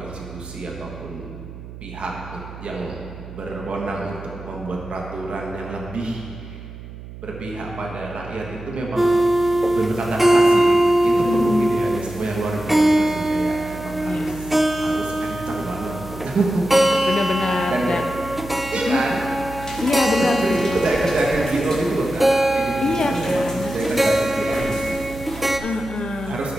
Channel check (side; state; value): right; noise; hum, 14 dB below the sound